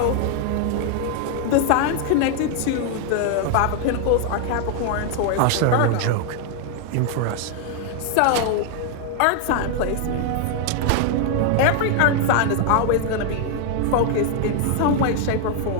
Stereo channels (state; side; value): different; both; correlation 0.00